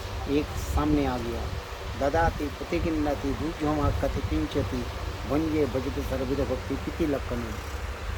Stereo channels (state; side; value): identical; both; correlation 1.00